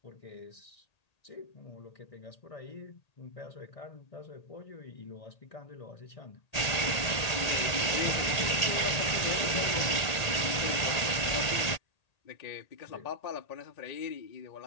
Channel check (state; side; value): late; right; 1.8 ms